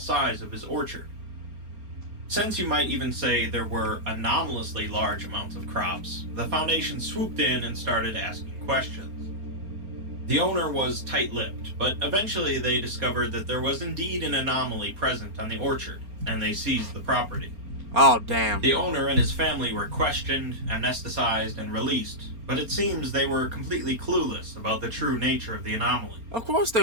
of his orchard. Since you might even say there were anomalously large amounts of crops, the Foundation swooped in and started asking questions. The owner was tight-lipped, but eventually they discovered that there was indeed an anomaly present on the orchard, and they seized the property. Oh, damn. The owner and his family were questioned, anesthetized, and released, but it seems they were completely clueless about the true nature of the anomaly. Of course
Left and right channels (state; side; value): late; left; 4.3 ms